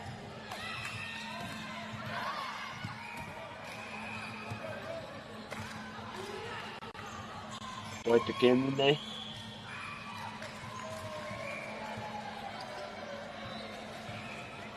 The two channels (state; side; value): identical; both; correlation 1.00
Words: Wait the game in there.